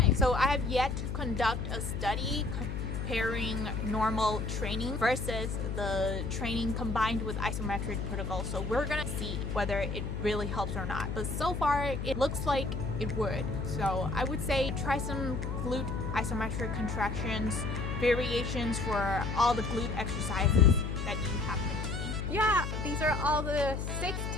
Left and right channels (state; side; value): noise; left; hum, 3 dB below the sound